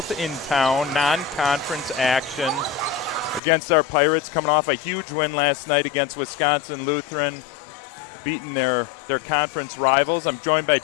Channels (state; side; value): drops out; right; at 3.4 s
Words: in town, non-conference action against our Pirates, coming off a huge win last night against Wisconsin Lutheran, beating their conference rivals. I'm joined by